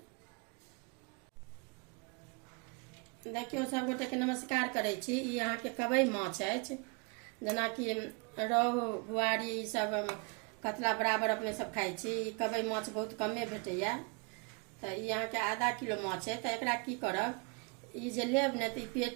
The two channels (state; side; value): quieter; left; 32.2 dB